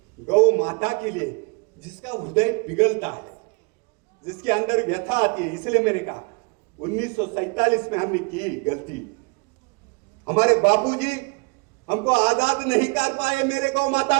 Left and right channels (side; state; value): left; quieter; 31.1 dB